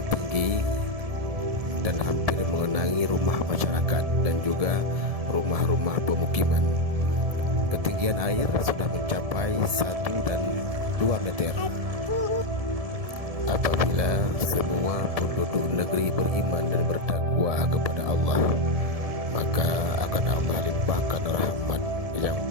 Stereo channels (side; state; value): left; late; 1.7 ms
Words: tinggi dan hampir mengenangi rumah masyarakat dan juga rumah-rumah pemukiman. Ketinggian air sudah mencapai 1 dan 2 meter. Apabila semua penduduk negeri beriman dan bertakwa kepada Allah, maka akan Allah limpahkan rahmat yang